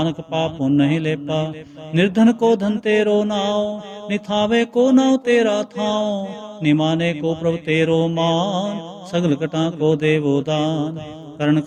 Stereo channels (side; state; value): both; identical; correlation 1.00